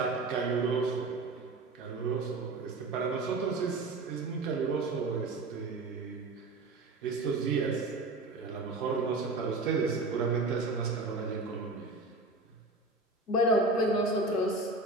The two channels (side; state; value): left; quieter; 3.1 dB